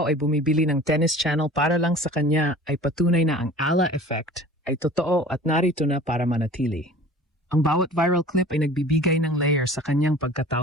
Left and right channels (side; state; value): both; normal; correlation 0.44